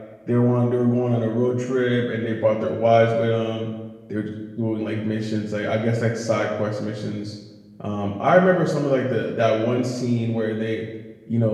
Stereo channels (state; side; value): identical; both; correlation 1.00